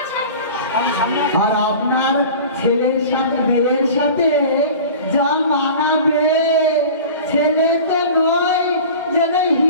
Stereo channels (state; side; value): inverted; both; correlation -0.38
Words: আছে। আর আপনার ছেলের সাথে মেয়ের সাথে যা মানাবে, ছেলে তো নয় যেন